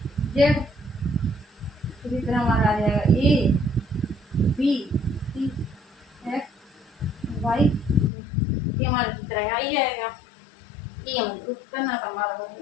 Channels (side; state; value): right; drops out; at 8.1 s